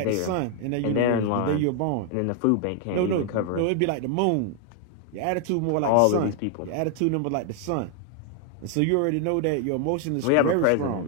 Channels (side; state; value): both; different; correlation 0.00